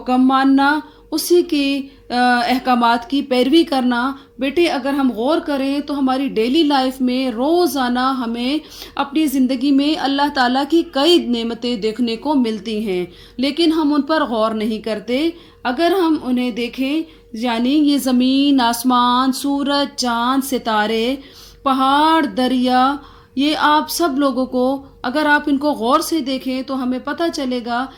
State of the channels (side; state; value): both; identical; correlation 1.00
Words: मानना, उसी की अहकामात की पैरवी करना। बेटे, अगर हम गौर करें तो हमारी डेली लाइफ में रोज़ाना हमें अपनी ज़िंदगी में अल्लाह ताला की कई नेमतें देखने को मिलती हैं, लेकिन हम उन पर गौर नहीं करते। अगर हम उन्हें देखें, यानी ये ज़मीन, आसमान, सूरज, चाँद, सितारे, पहाड़, दरिया, ये आप सब लोगों को अगर आप इनको गौर से देखें तो हमें पता चलेगा